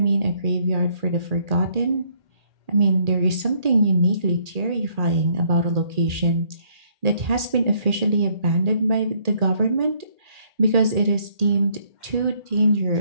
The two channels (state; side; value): late; left; 1.8 ms